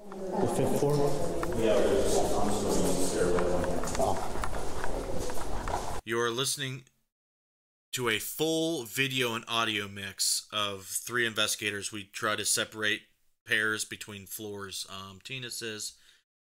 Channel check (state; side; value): identical; both; correlation 1.00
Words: the 5th floor. Yeah, I'm still in the stairwell. You are listening to a full video and audio mix of 3 investigators. We try to separate pairs between floors. Tina says,